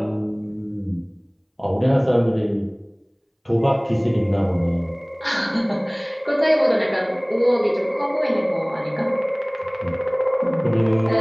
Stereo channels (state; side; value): identical; both; correlation 1.00